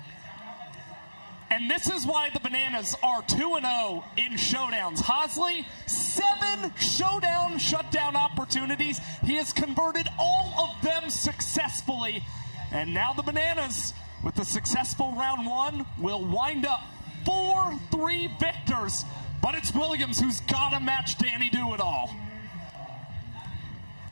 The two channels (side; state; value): both; inverted; correlation -1.00